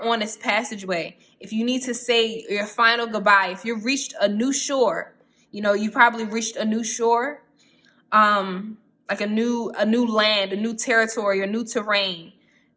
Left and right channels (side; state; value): both; identical; correlation 1.00